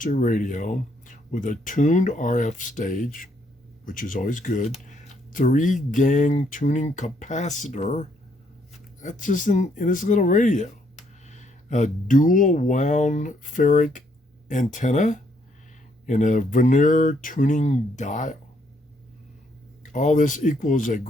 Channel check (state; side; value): normal; both; correlation 0.71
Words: radio with a tuned RF stage, which is always good. 3-gang tuning capacitor. That's just in this little radio. A dual wound ferric antenna and a veneer tuning dial. All this equals a